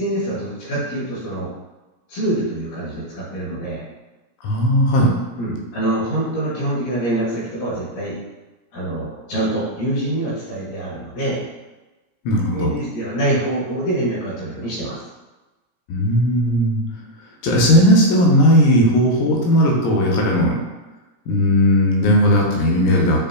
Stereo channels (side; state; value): right; late; 17 ms